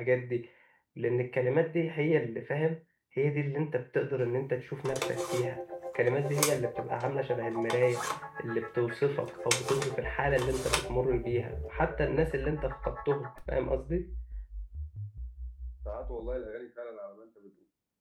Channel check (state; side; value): identical; both; correlation 1.00